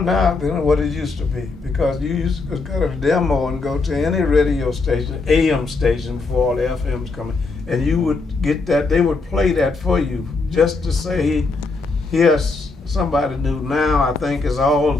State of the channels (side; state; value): right; quieter; 3.8 dB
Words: than what it used to be, because you used to go to a demo and go to any radio station, AM station, before all the FMs coming, and you would get that, they would play that for you just to say, here's somebody new. Now I think is all